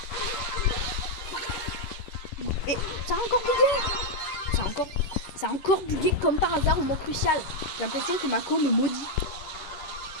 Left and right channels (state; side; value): late; right; 11 ms